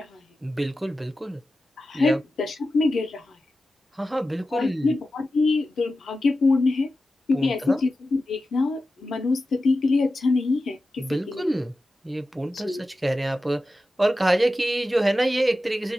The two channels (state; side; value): normal; both; correlation 0.93